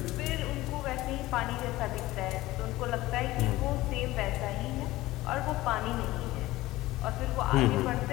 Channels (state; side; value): quieter; right; 17.7 dB